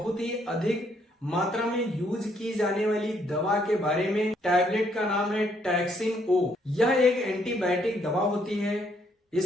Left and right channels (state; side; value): normal; both; correlation 0.70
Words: ही अधिक मात्रा में यूज की जाने वाली दवा के बारे में। टैबलेट का नाम है टैक्सिम ओ। यह एक एंटीबायोटिक दवा होती है।